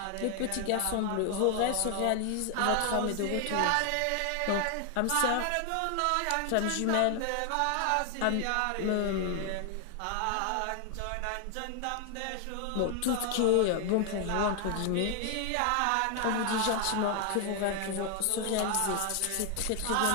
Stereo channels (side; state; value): both; different; correlation 0.00